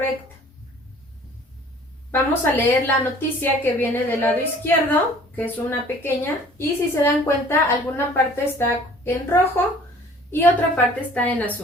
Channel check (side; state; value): both; normal; correlation 0.51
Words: Vamos a leer la noticia que viene del lado izquierdo, que es una pequeña, y si se dan cuenta, alguna parte está en rojo y otra parte está en